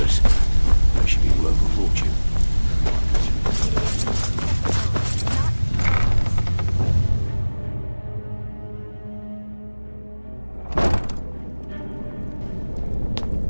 That should be worth a fortune.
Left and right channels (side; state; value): both; inverted; correlation -1.00